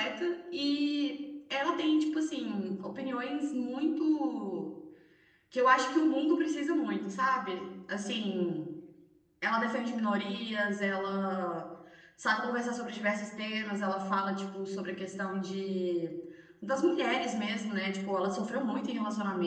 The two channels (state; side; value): identical; both; correlation 1.00